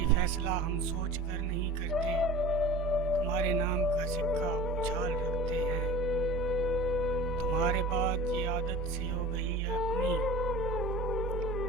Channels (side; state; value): both; normal; correlation 0.38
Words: फैसला हम सोच कर नहीं करते, तुम्हारे नाम का सिक्का उछाल रखते हैं। तुम्हारे बाद ये आदत सी हो गई है अपनी,